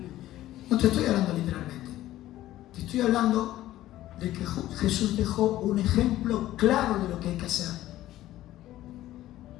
No te estoy hablando literalmente. Te estoy hablando de que Jesús dejó un ejemplo claro de lo que hay que hacer.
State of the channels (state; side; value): quieter; right; 14.6 dB